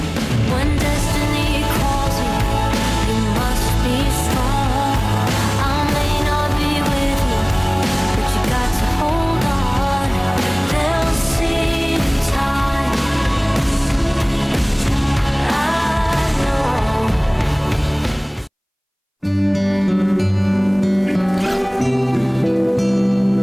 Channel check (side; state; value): both; identical; correlation 1.00